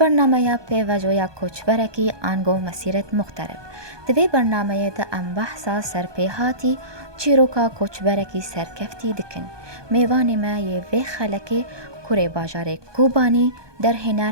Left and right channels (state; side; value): late; left; 1.2 ms